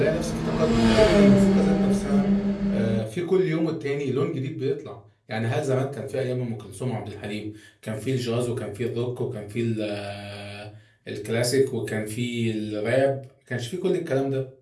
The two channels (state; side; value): identical; both; correlation 1.00